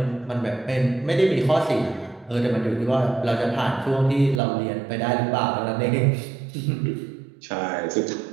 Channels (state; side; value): drops out; left; at 4.4 s